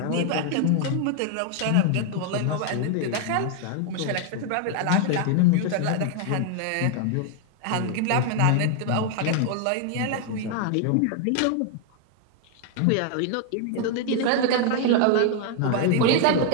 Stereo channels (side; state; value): both; different; correlation 0.00